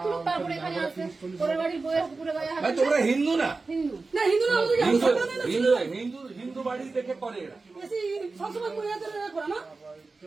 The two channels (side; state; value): left; quieter; 3.8 dB